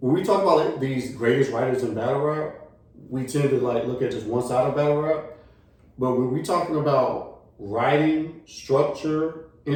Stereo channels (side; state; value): both; identical; correlation 1.00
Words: when we talk about like these greatest writers in battle rap, we tend to like look at just one side of battle rap. But when we talking about writing, structure,